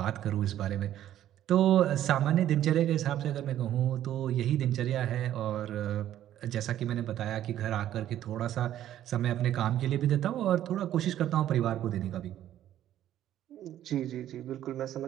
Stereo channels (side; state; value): left; quieter; 12.0 dB